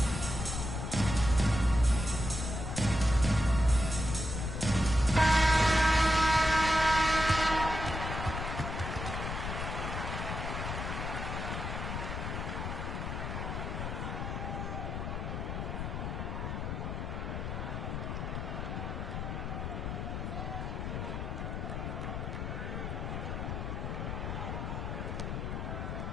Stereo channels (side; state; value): left; noise; rumble, 4 dB below the sound